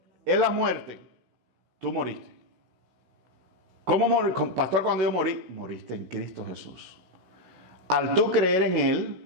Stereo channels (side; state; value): left; late; 16 ms